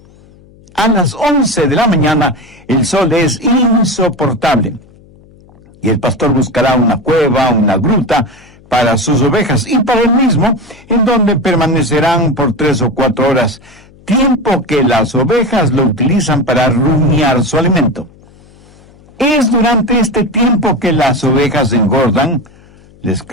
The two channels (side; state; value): left; noise; hum, 27 dB below the sound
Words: A las 11 de la mañana, el sol es insoportable y el pastor buscará una cueva, una gruta para sus ovejas y para él mismo, en donde permanecerán por 3 o 4 horas, tiempo que las ovejas lo utilizan para rumiar su alimento. Es durante este tiempo que las ovejas engordan, les